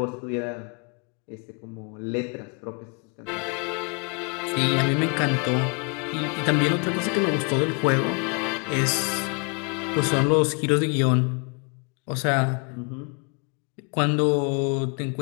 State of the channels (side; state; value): right; quieter; 37.1 dB